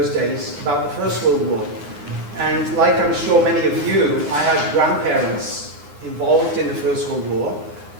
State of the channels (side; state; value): left; late; 9.7 ms